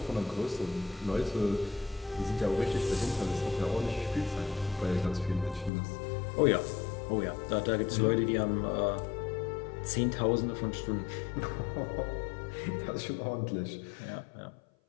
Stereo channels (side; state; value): right; drops out; at 5.7 s